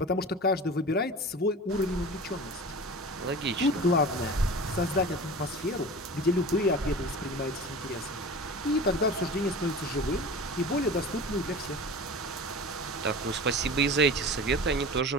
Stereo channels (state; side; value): normal; both; correlation 0.35